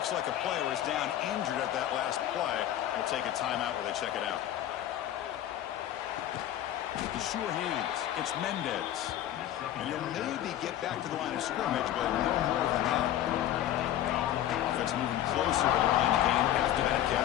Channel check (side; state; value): right; quieter; 12.1 dB